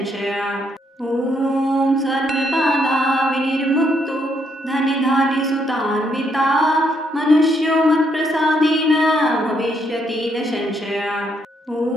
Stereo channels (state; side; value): normal; both; correlation 0.74